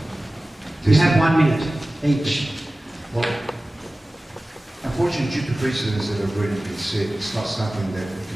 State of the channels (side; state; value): both; normal; correlation 0.97